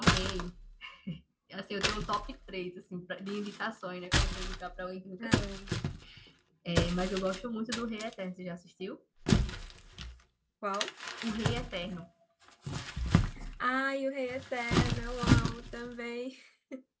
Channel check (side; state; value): both; identical; correlation 1.00